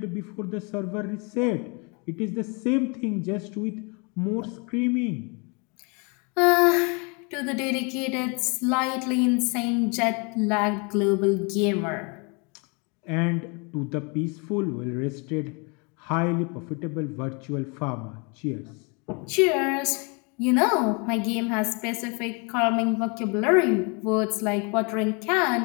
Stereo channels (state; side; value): quieter; right; 32.4 dB